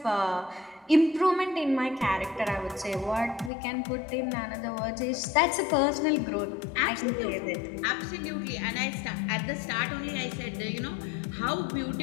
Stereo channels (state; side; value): drops out; right; at 3.5 s